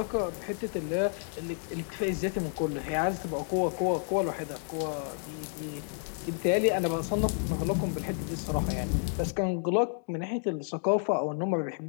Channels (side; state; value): right; silent; 57 dB below the other